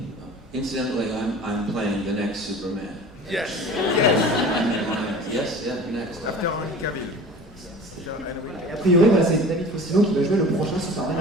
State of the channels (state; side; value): normal; both; correlation 0.40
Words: Incidentally, I'm playing the next Superman. Yes. Yes, yeah, next. After Henry Cavill. Et a priori, voilà, c'est David Faustino qui va jouer le prochain Superman.